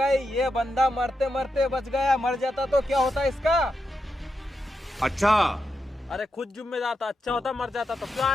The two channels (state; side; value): normal; both; correlation 0.86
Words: ये बंदा मरते मरते बच गया, मर जाता तो क्या होता इसका? अच्छा, अरे खुद जिम्मेदार था, अच्छा होता मर जाता तो क्यों